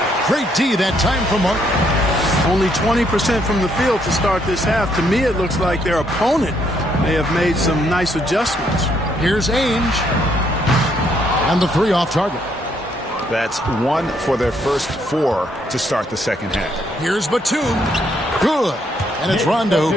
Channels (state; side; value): normal; both; correlation 0.71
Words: Great D that time from Martin. Only 20% from the field to start this half. To me, it looks like their opponent may have made some nice adjustments. Here's Ainge. And the 3 off target. That's 1 for their first 4 to start the second half. Here's Batum. Good. And it's Rondo